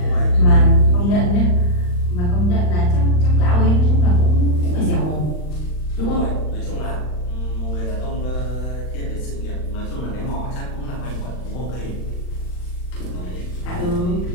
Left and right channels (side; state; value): right; late; 40 ms